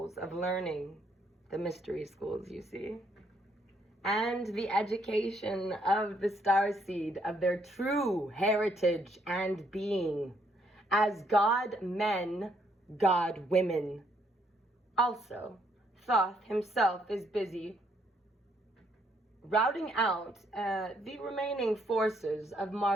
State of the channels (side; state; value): both; normal; correlation 0.71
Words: of learning, the mystery schools, you see, and the education of the starseed of their true heritage and being as God men, God women. Also, Thoth himself is busy routing out the remaining forces of